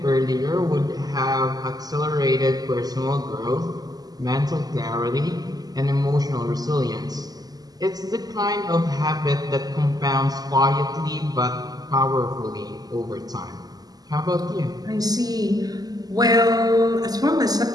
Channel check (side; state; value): left; late; 0.18 ms